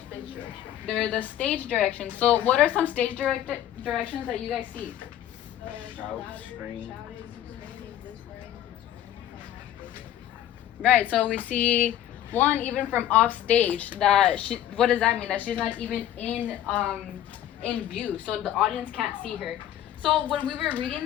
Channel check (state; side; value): quieter; right; 11.7 dB